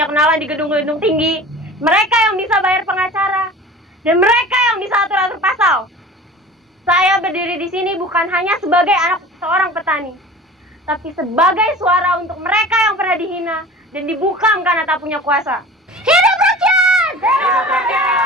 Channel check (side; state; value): both; normal; correlation 0.40